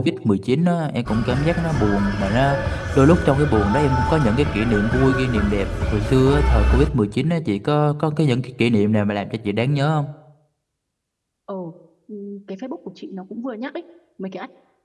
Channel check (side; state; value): both; identical; correlation 1.00